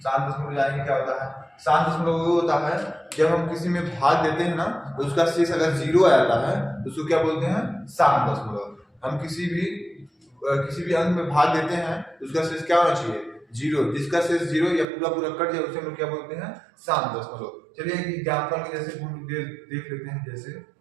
शांत दशमलव जानेंगे क्या होता है। शांत दशमलव वो होता है जब हम किसी में भाग देते हैं ना तो उसका शेष अगर 0 आ जाता है तो उसको क्या बोलते हैं? शांत दशमलव। हम किसी भी अंक में भाग देते हैं तो उसका शेष क्या होना चाहिए? 0। जिसका शेष 0 या पूरा पूरा कट जाए उसे हम लोग क्या बोलते हैं? शांत दशमलव। चलिए एक एग्जाम्पल के जैसे हम देख लेते हैं। जैसे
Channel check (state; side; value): drops out; left; at 14.9 s